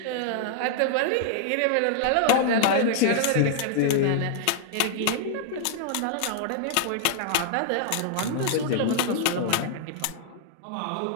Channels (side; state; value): both; different; correlation -0.01